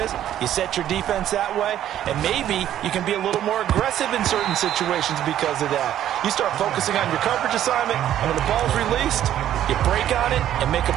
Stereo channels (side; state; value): left; quieter; 11.5 dB